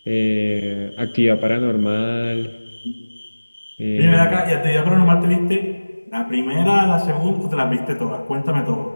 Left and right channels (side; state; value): both; inverted; correlation -1.00